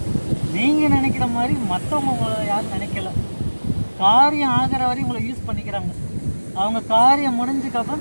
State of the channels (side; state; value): both; inverted; correlation -1.00